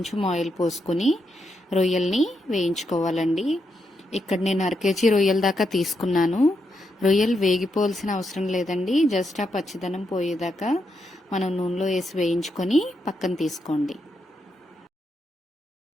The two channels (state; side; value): normal; both; correlation 0.82